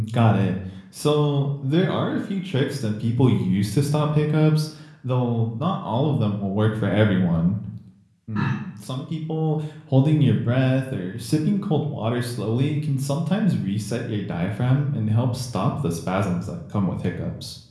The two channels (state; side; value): identical; both; correlation 1.00